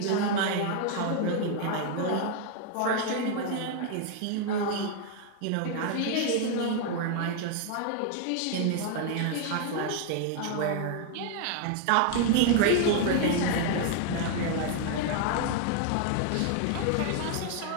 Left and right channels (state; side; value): different; both; correlation 0.00